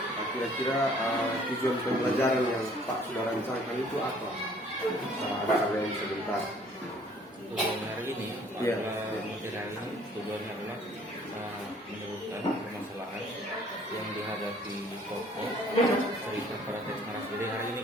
Kira-kira tujuan pembelajaran yang Pak sudah rancangkan itu apa? Kalian sebentar. Tujuan hari ini, Iya. materi hari ini tujuannya adalah menyebutkan permasalahan yang dihadapi tokoh cerita pada teks narasi. Jadi hari ini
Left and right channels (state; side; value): normal; both; correlation 0.57